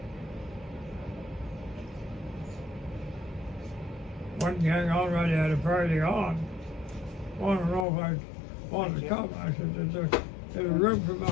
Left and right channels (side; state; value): right; drops out; at 7.9 s